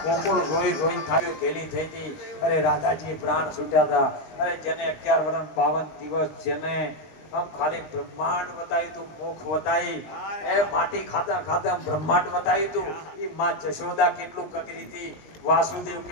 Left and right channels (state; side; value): late; right; 20 ms